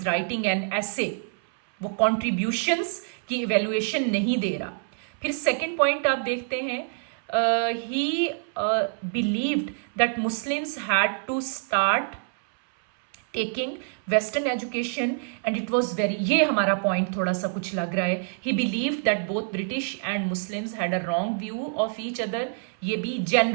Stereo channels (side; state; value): left; silent; 61 dB below the other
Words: writing an essay, वो contributions की इवेल्युएशन नहीं दे रहा। फिर सेकेंड पॉइंट आप देखते हैं, he believed that Muslims had to start taking western education and it was very, ये हमारा पॉइंट थोड़ा सा कुछ लग रहा है। He believed that both British and Muslims had a wrong view of each other. ये भी